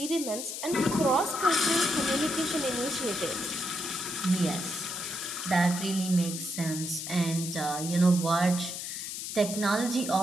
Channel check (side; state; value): left; noise; hiss, 6 dB below the sound